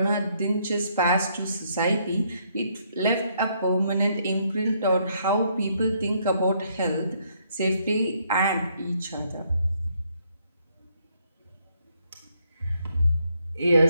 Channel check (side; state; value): both; inverted; correlation -0.71